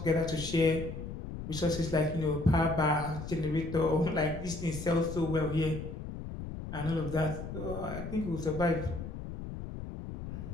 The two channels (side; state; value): left; noise; rumble, 8 dB below the sound